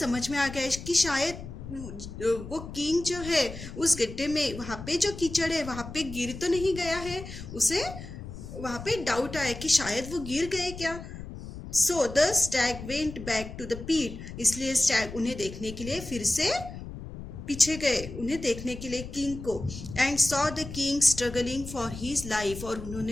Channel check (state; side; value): noise; left; rumble, 11 dB below the sound